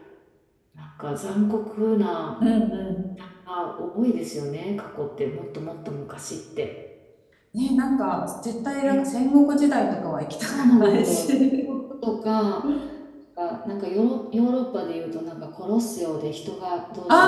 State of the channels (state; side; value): identical; both; correlation 1.00